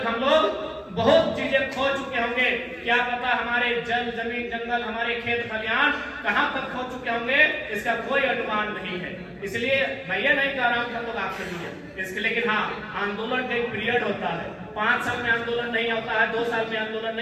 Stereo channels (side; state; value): both; identical; correlation 1.00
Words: हम लोग बहुत चीजें खो चुके होंगे। क्या पता हमारे जल, जमीन, जंगल, हमारे खेत खलिहान कहां तक खो चुके होंगे, इसका कोई अनुमान नहीं है। इसलिए मैं ये नहीं कह रहा हूं कि हम लोग आखिरी हैं इसके, लेकिन हाँ, आंदोलन का एक पीरियड होता है। 5 साल में आंदोलन नहीं होता है, 2 साल में आंदोलन